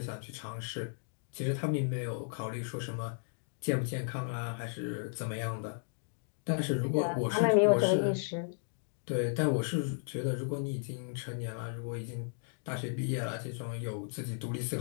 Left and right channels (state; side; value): silent; right; digital silence